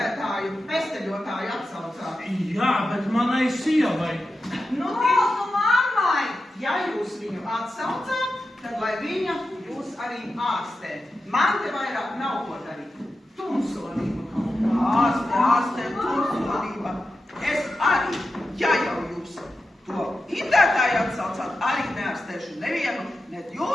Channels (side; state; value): both; normal; correlation 0.91